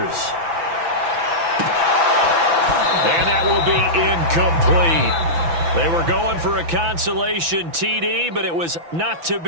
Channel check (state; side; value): late; left; 6.0 ms